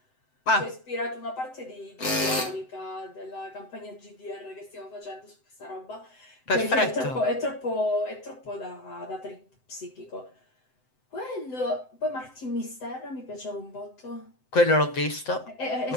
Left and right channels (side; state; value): right; late; 7.8 ms